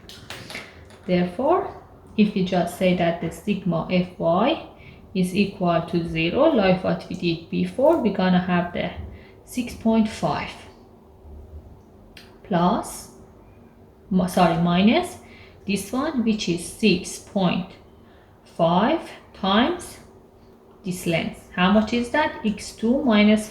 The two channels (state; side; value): identical; both; correlation 1.00